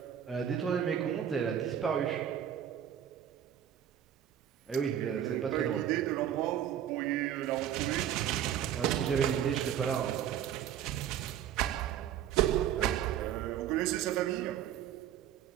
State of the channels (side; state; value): left; quieter; 10.1 dB